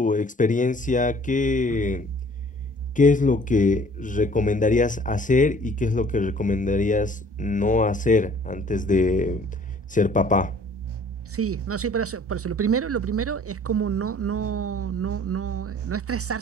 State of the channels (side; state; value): both; normal; correlation 0.53